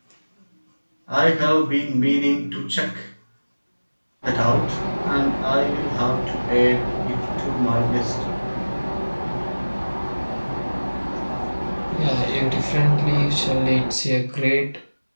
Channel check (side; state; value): both; inverted; correlation -1.00